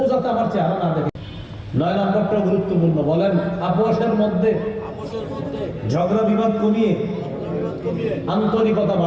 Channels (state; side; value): identical; both; correlation 1.00